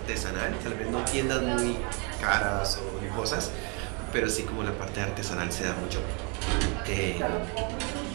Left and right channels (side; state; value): left; quieter; 33.7 dB